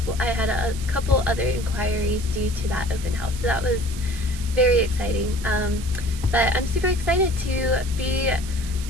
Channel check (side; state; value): right; noise; hiss, 14 dB below the sound